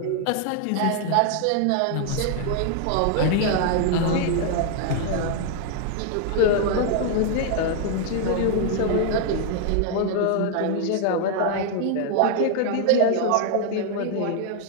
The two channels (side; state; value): both; different; correlation 0.00